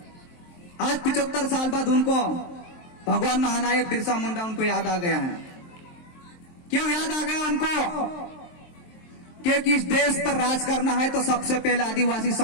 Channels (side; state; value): right; late; 23 ms